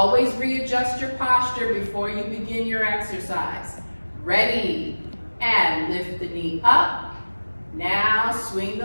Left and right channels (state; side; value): inverted; both; correlation -1.00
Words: readjust your posture before you begin your exercise. Ready, and lift the knee up. Now swing